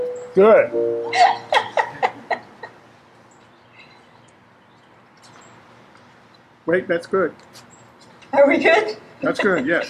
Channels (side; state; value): both; identical; correlation 1.00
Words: Good. Wait, that's good. Are we good? That's good,